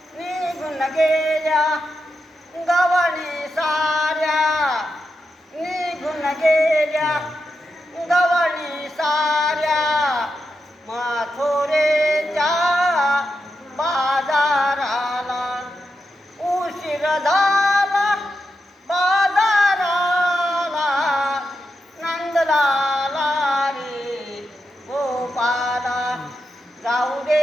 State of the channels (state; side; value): normal; both; correlation 0.87